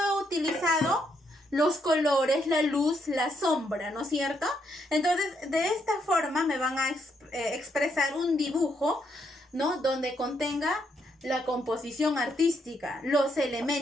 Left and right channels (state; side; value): normal; both; correlation 0.76